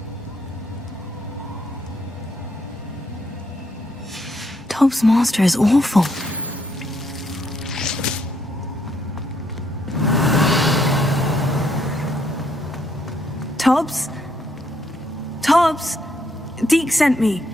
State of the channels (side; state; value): both; normal; correlation 0.73